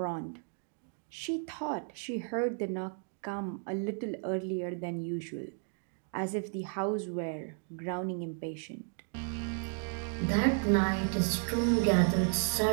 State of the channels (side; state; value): left; silent; 55 dB below the other